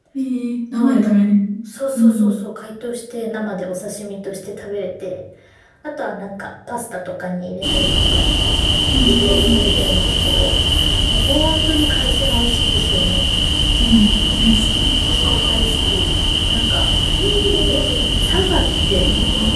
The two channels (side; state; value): both; identical; correlation 1.00